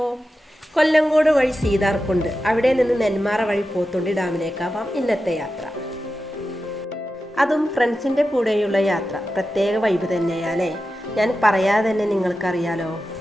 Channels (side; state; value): both; normal; correlation 0.92